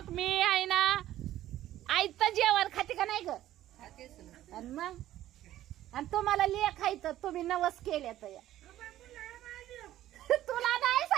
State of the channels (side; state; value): left; quieter; 13.5 dB